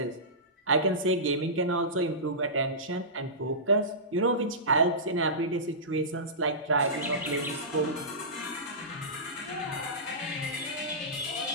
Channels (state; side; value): normal; both; correlation -0.19